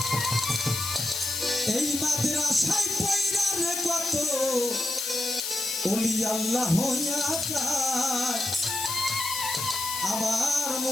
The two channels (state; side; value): noise; left; hiss, 3 dB below the sound